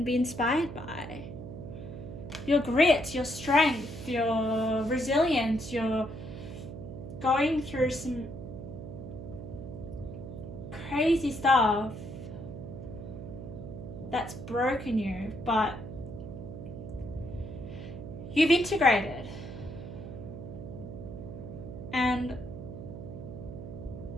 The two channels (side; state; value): right; noise; hum, 10 dB below the sound